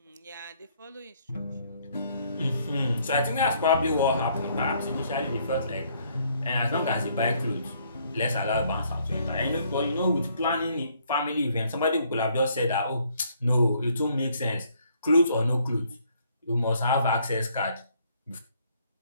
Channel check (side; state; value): both; inverted; correlation -0.66